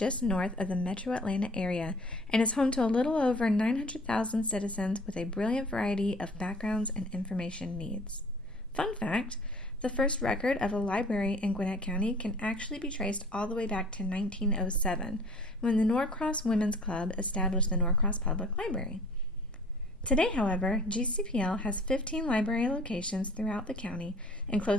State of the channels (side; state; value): both; normal; correlation 0.50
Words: north of the metro Atlanta area and is home to a little over 900,000 citizens with a brilliant variety of backgrounds and information needs. Fun fact, the first record of a library in Gwinnett County can actually be traced all the way back to 1907, when the Norcross Women's Club established the Norcross Public Library. Today, however, GCPL has 15 library locations throughout the county and